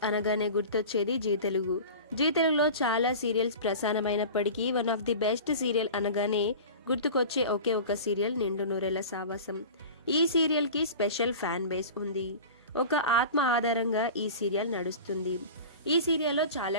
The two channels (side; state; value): both; inverted; correlation -0.35